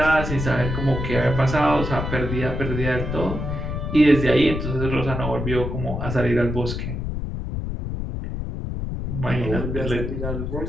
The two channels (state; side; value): noise; left; rumble, 4 dB below the sound